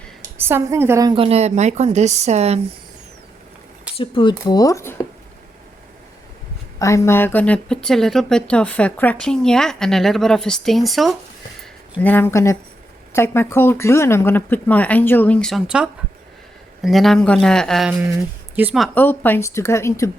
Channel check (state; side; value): normal; both; correlation 0.84